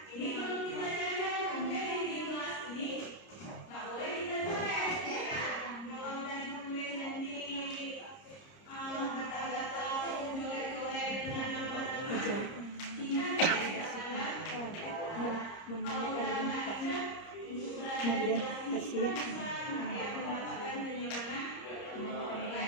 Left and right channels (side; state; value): right; late; 30 ms